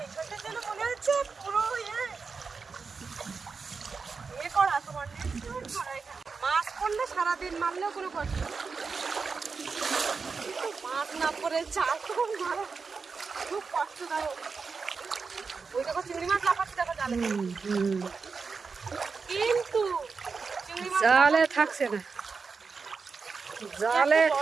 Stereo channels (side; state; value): left; quieter; 4.9 dB